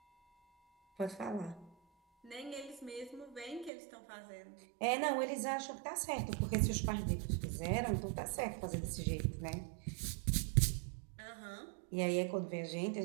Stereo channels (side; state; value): left; drops out; at 3.7 s